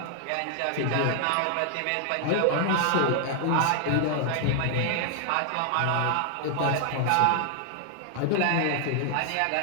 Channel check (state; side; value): different; both; correlation 0.00